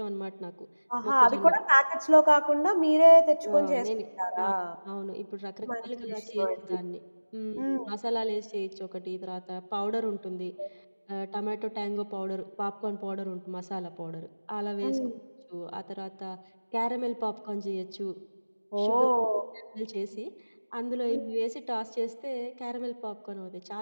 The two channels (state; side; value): inverted; both; correlation -1.00